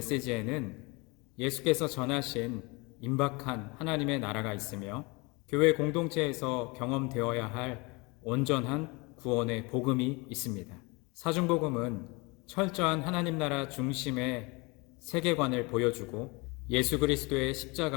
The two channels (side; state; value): right; quieter; 27.1 dB